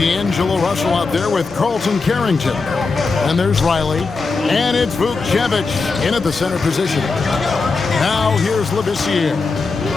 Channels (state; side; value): quieter; right; 4.2 dB